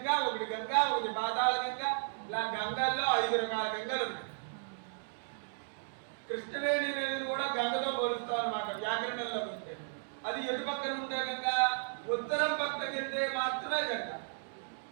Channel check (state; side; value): silent; left; digital silence